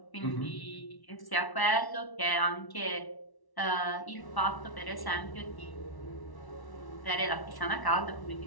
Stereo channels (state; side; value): late; right; 1.1 ms